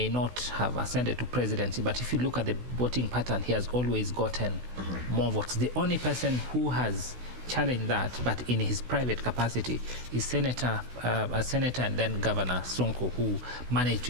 not have ascended to presidency. But if you look at the voting pattern, he has always gotten more votes. The only person who has challenge that, but in his private capacity, is Senator and then Governor Sonko, who managed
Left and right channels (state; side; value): late; left; 16 ms